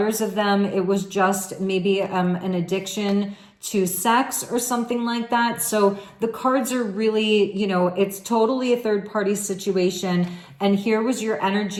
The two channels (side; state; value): both; identical; correlation 1.00